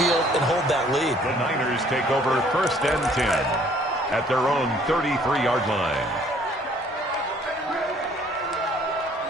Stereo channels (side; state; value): both; normal; correlation 0.59